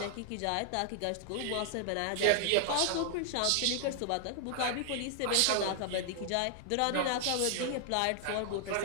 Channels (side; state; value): both; different; correlation 0.00